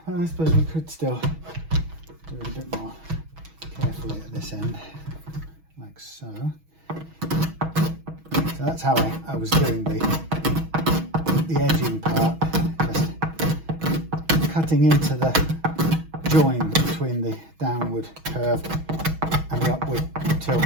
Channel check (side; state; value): left; late; 6.2 ms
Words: Well, I suppose we could still do it a bit more carefully at this end, like so. So that's how I was doing the edging part, just cutting into the join between the downward curve and the upward tilt